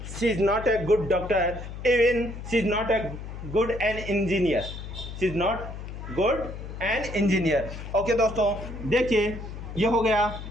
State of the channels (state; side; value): noise; left; hum, 10 dB below the sound